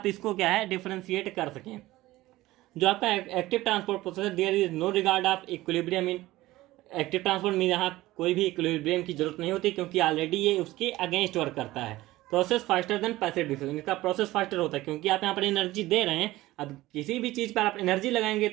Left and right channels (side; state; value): left; quieter; 17.5 dB